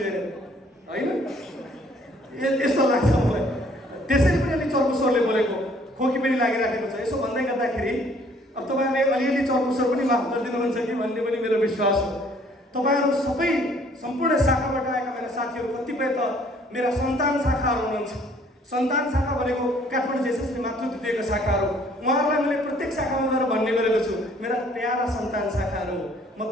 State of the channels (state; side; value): normal; both; correlation 0.60